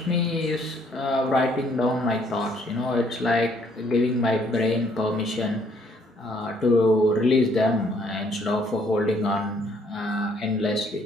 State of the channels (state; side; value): normal; both; correlation 0.65